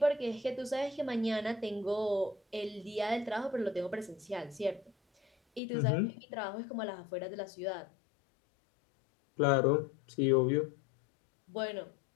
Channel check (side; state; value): right; drops out; at 5.6 s